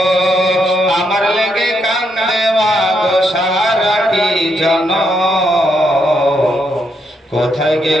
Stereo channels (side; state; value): both; normal; correlation 0.78